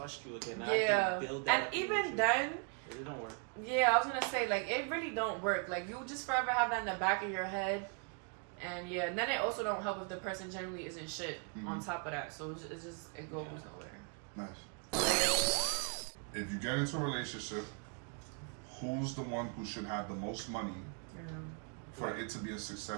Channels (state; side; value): quieter; left; 38.9 dB